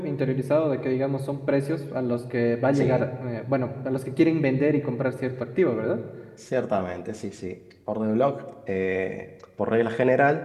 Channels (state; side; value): identical; both; correlation 1.00